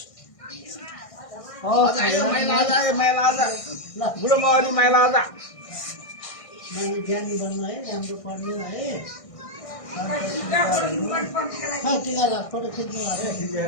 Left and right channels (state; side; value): late; right; 1.6 ms